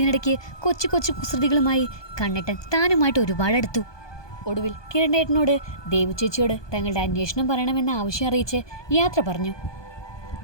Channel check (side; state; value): right; late; 1.2 ms